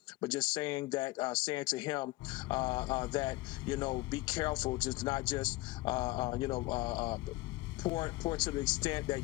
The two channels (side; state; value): right; quieter; 20.2 dB